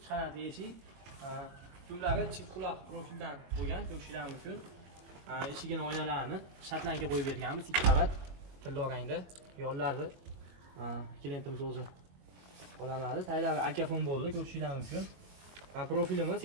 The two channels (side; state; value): left; late; 22 ms